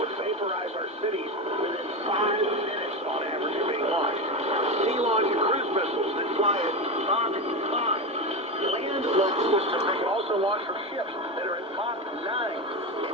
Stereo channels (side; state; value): both; normal; correlation 0.17